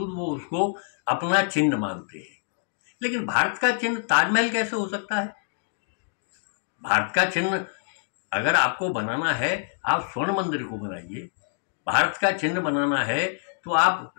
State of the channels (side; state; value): right; silent; digital silence